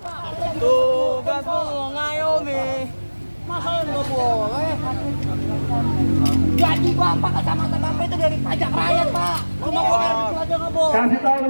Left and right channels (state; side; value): inverted; both; correlation -1.00